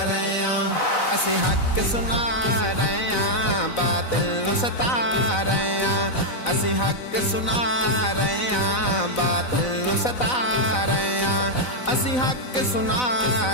रहे असी हक सुना रहे बातिल सता रहे असी हक सुना रहे बातिल सता रहे असी हक सुना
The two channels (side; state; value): right; late; 4.0 ms